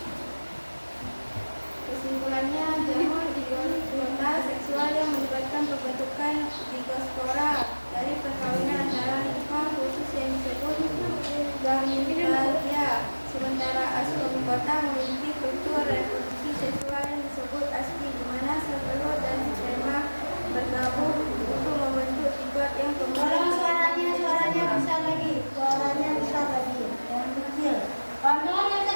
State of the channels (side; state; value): both; inverted; correlation -1.00